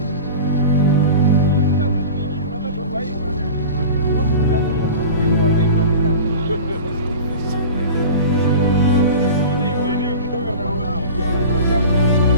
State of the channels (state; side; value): inverted; both; correlation -0.34